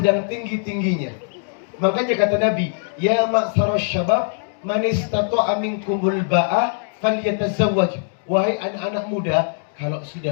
tinggi-tingginya. Makanya kata Nabi, ya ma'syaras syabab, man istata'a minkumul ba'a falyatazawwaj. Wahai anak-anak muda, kalau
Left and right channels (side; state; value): right; silent; digital silence